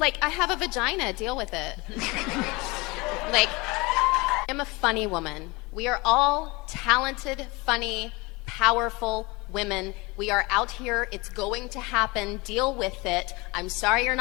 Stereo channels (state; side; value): quieter; right; 24.8 dB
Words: I have a vagina, deal with it. Like, I'm a funny woman. We are all talented, funny, powerful women. We are out here. It's going to happen. Deal with it. I'm sorry you're